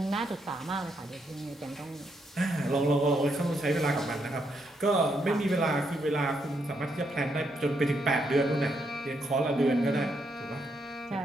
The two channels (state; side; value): normal; both; correlation 0.78